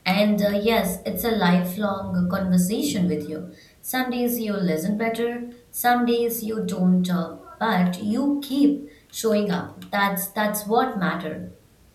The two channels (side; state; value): both; identical; correlation 1.00